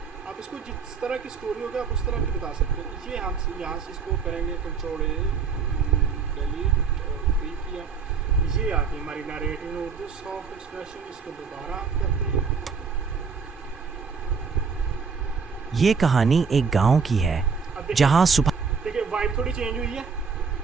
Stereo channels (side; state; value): left; quieter; 5.5 dB